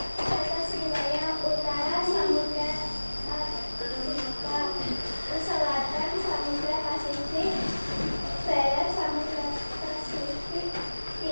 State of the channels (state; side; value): inverted; both; correlation -1.00